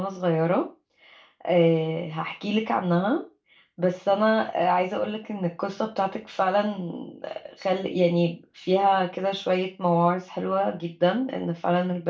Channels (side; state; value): both; identical; correlation 1.00